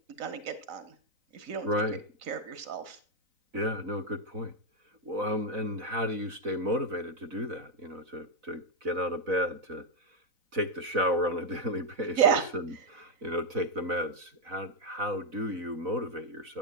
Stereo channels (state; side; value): late; left; 4.0 ms